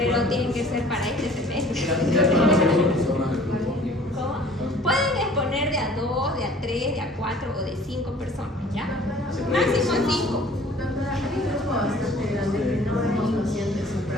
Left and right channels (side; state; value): both; normal; correlation 0.50